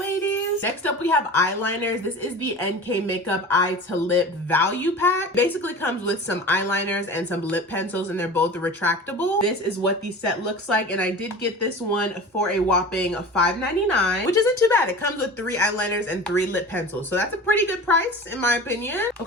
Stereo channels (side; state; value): both; normal; correlation 0.36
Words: Next up, we have eyeliners. This is the NK Makeup Eye to Lip Value Pack. Basically comes with some eyeliners and some lip pencils, and they're both retractable. This is what the set looks like, and I did get this one for a whopping $5.99, which isn't too bad. It comes with 3 eyeliners and 3 lip pencils, so that's a pretty good price in my opinion.